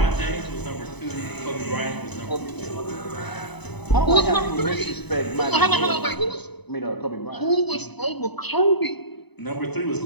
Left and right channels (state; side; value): late; right; 0.99 ms